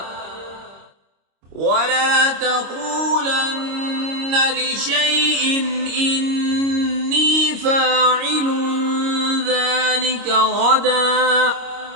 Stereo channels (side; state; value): left; late; 26 ms